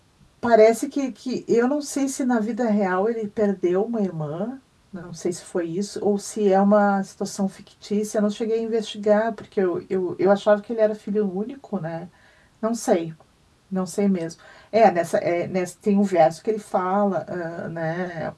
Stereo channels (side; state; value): both; identical; correlation 1.00